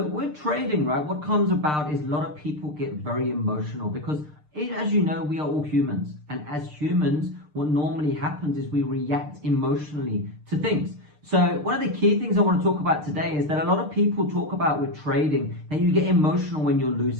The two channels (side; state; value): left; late; 6.6 ms